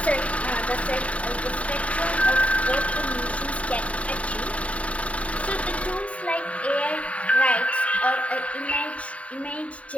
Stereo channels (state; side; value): late; right; 0.065 ms